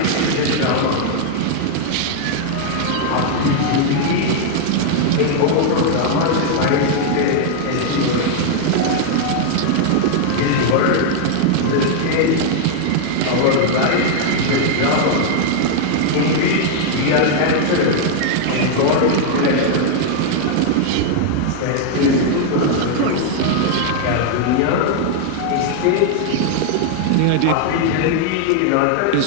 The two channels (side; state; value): both; different; correlation 0.00